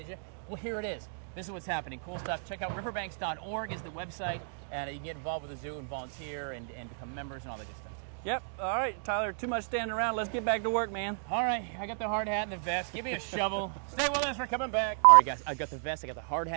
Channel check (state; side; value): silent; left; digital silence